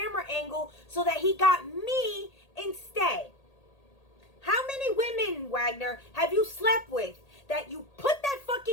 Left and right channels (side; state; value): right; late; 1.8 ms